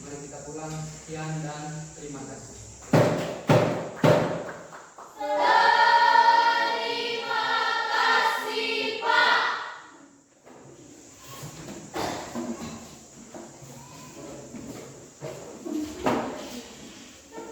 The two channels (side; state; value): both; identical; correlation 1.00